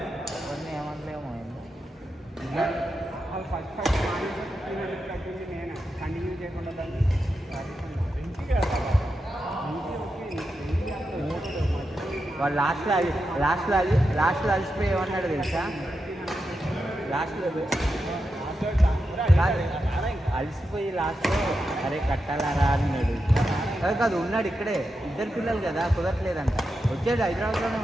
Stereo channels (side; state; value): both; normal; correlation 0.88